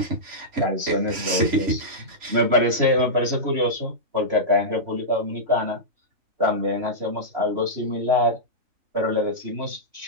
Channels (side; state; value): left; late; 3.5 ms